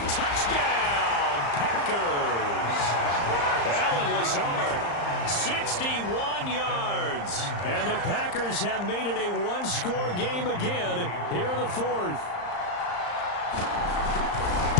Touchdown, Packers. Alan Lazard, 61 yards. And the Packers have made it a 1-score game again here in the 4th.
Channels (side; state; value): right; late; 35 ms